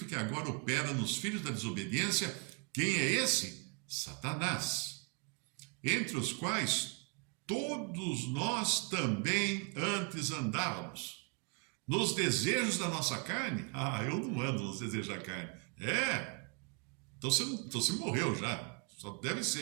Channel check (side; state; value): left; quieter; 36.1 dB